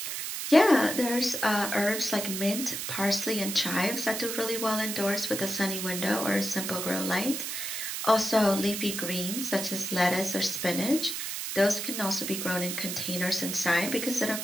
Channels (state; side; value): noise; right; hiss, 4 dB below the sound